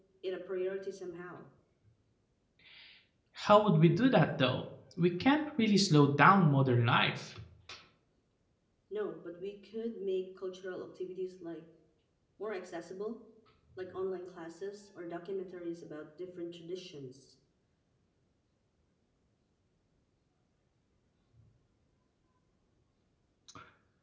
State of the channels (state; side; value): identical; both; correlation 1.00